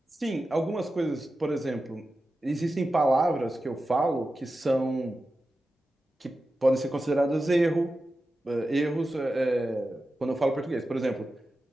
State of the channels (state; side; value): normal; both; correlation 0.92